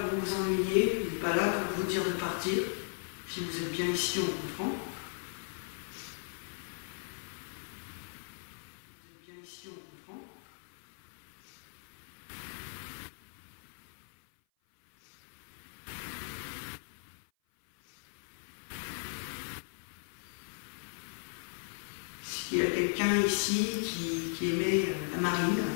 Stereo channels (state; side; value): silent; right; 53 dB below the other